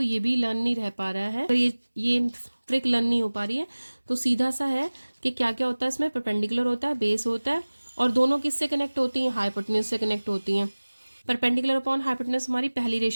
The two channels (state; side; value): inverted; both; correlation -1.00